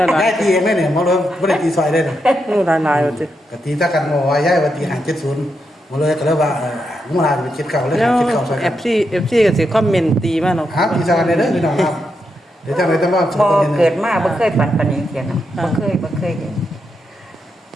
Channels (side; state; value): both; normal; correlation 0.83